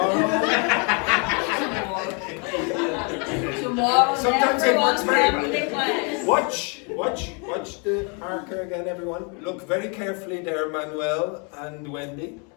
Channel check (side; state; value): right; quieter; 35.4 dB